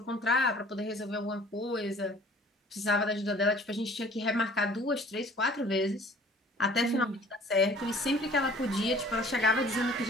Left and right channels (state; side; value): normal; both; correlation 0.51